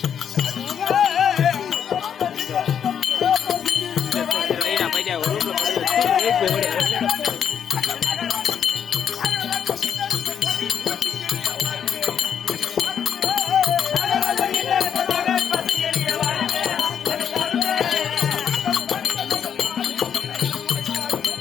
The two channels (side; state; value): right; quieter; 8.3 dB